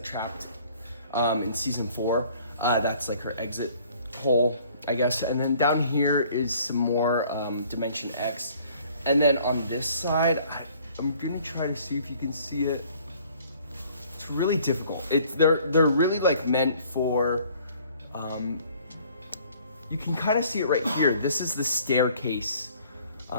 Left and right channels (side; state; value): both; inverted; correlation -0.57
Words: trapped in season 4. That's like her exit hole, I guess. And then down here is some more Dimension X. And then on this side, I'm gonna try to see if you can see it. It's really difficult. They're really like meant for, you can kind of see it right here. This is the staircase.